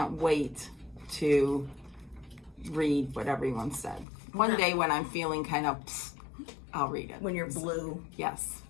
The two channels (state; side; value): drops out; right; at 4.0 s